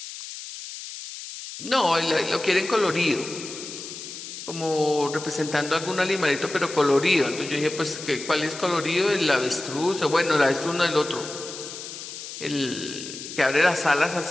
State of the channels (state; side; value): noise; left; hiss, 11 dB below the sound